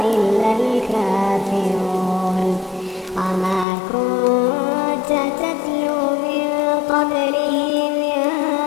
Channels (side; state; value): right; drops out; at 3.7 s